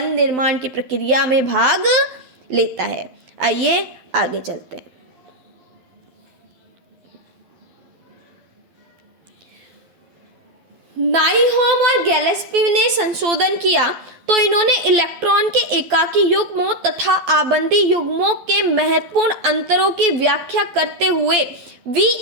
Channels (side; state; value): left; late; 12 ms